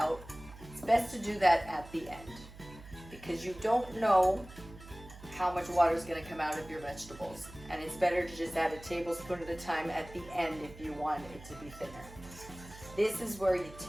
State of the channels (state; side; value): noise; right; hum, 17 dB below the sound